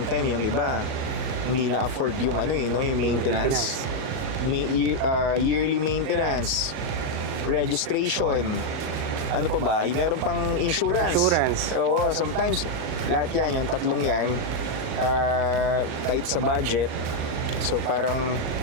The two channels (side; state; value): left; late; 39 ms